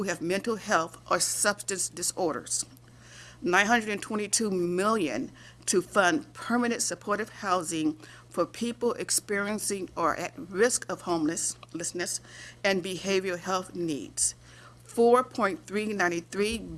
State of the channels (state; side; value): identical; both; correlation 1.00